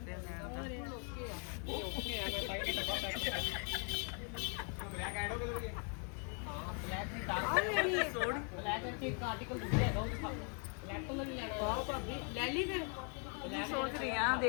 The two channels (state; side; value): quieter; right; 39.1 dB